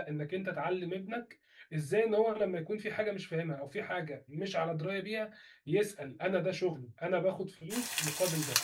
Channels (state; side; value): identical; both; correlation 1.00